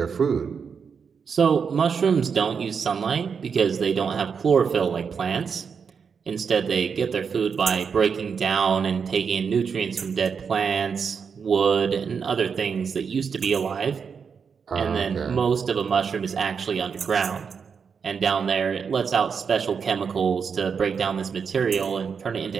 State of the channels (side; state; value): left; quieter; 6.2 dB